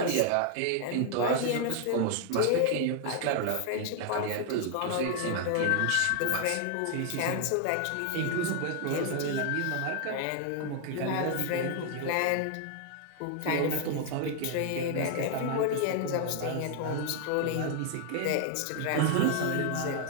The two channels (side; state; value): both; different; correlation 0.00